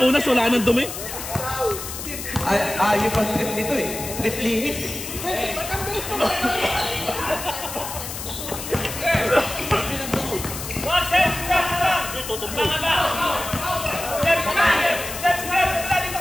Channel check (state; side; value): noise; left; hiss, 8 dB below the sound